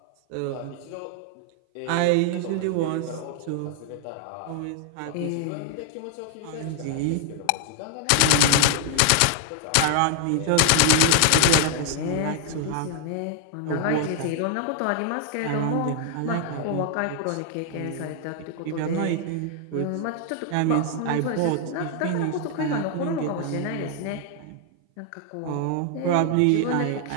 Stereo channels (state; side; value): different; both; correlation 0.00